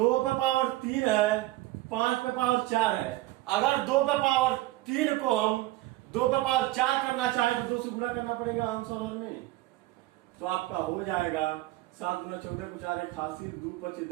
पे पावर 3 है, 5 पे पावर 4 है। अगर 2 पे पावर 3 को हम 2 पे पावर 4 करना चाहे तो 2 से गुणा करना पड़ेगा आंसर में, तो आपका हो जाएगा 7 गुना 14 को 4 81, 2 25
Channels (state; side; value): quieter; left; 17.6 dB